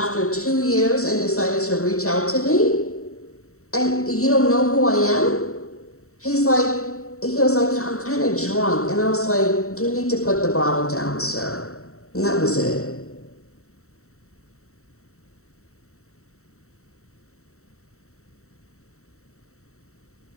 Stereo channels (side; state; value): right; late; 0.64 ms